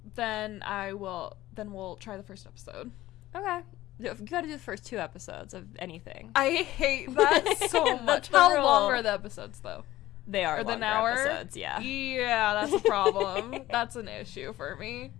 Then we'll try the first episode. Okay. You gotta do the first 2 episodes of anything. I hate that so much. How long are the episodes, though? They are longer episodes, yeah. Yeah, that's a problem. That's an issue for me.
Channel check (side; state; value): right; quieter; 15.8 dB